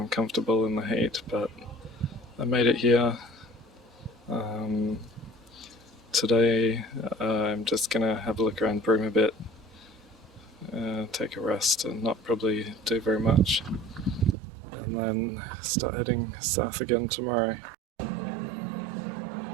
in the heat, but I made it here. Today I'm just going to have a look around Broome a bit, take a rest and not probably do very much, and then start heading south again tomorrow.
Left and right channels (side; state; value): left; drops out; at 14.4 s